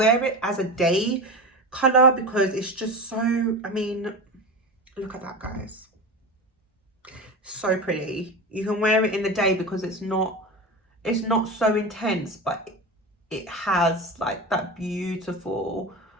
it as a day color because it's just so, I mean, look at that, guys. So pretty. You can wear it in the day because it's not so intense, but it has like that beautiful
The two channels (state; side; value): normal; both; correlation 0.25